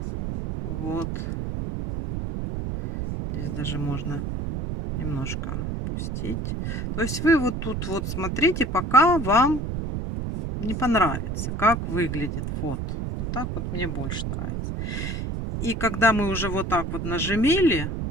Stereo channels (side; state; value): right; noise; rumble, 4 dB below the sound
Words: Вот. Здесь даже можно немножко опустить. То есть вы вот тут вот смотрите, пока вам не понравится, как выглядит вот. Вот так вот мне больше нравится. И когда мы уже вот так вот нажимили,